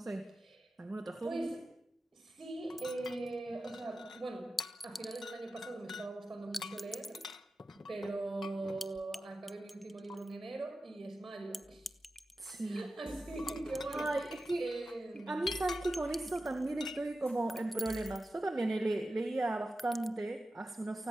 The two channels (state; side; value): normal; both; correlation 0.93